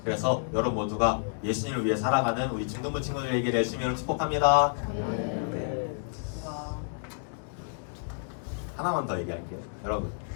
그래서 여러분 모두가 예수님을 위해 살아가는 우리 중등부 친구들에게 열심히 축복합니다. 네. 하나만 더 얘기할게요. 여러분,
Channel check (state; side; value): silent; right; digital silence